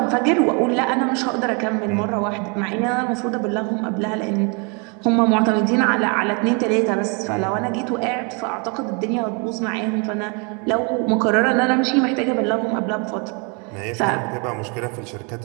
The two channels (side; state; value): left; quieter; 34.0 dB